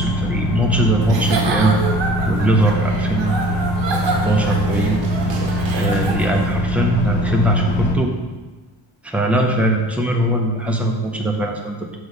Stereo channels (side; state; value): both; normal; correlation 0.48